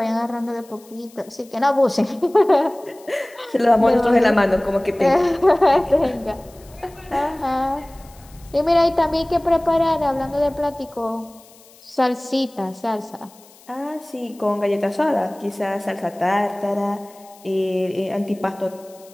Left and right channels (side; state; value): left; noise; hiss, 26 dB below the sound